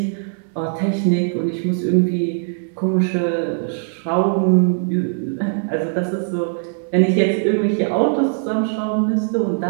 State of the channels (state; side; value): silent; left; 65 dB below the other